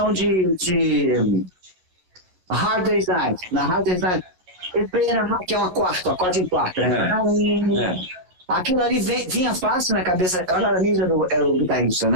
de Hard Day's Night, na Hard Day's Night, que é uma quarta, acorde em quarta, né? Aquilo ali vinha fácil na cabeça. O Aramis era o guitarrista,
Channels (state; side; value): late; left; 11 ms